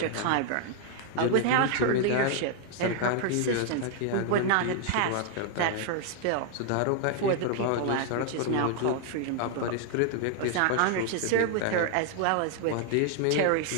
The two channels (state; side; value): different; both; correlation 0.00